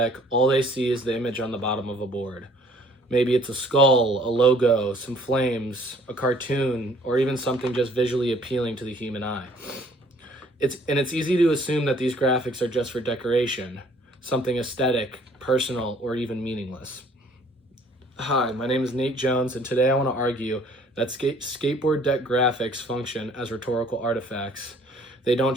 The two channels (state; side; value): normal; both; correlation 0.57